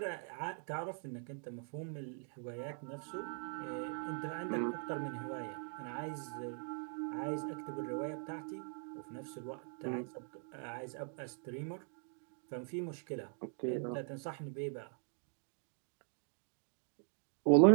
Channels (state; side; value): silent; left; 51 dB below the other